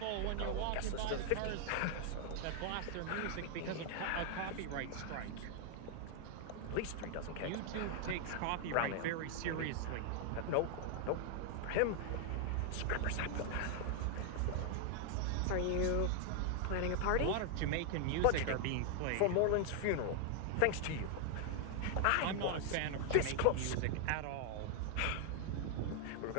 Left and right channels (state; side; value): different; both; correlation 0.00